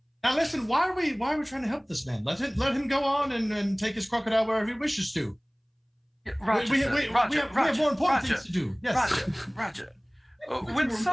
Now listen, why are we trying to help this man? Let him go on and take his crocodile wherever he wishes to. Roger, we sir. have more important Roger, things to do. Yes. Roger. When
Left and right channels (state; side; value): identical; both; correlation 1.00